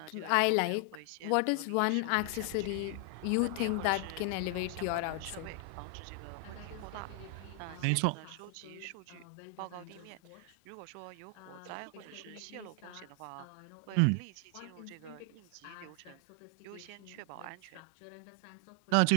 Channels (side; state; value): both; different; correlation 0.00